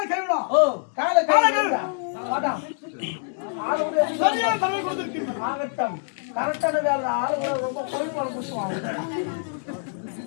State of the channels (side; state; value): right; silent; 62 dB below the other